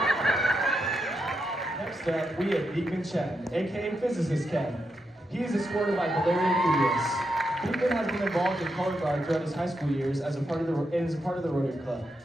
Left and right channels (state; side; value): normal; both; correlation 0.84